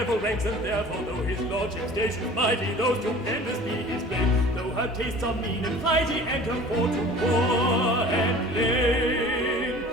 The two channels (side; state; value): both; normal; correlation 0.44